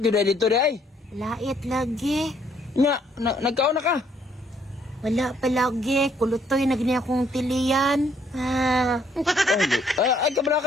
dito day. Lait lagi. Nagkaon na ka? Wala pa lagi, kulutoy na gini akong tilian. Ah. Ay, kabala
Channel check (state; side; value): normal; both; correlation 0.67